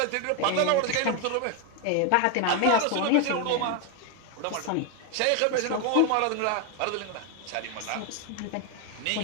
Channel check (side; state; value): both; different; correlation 0.01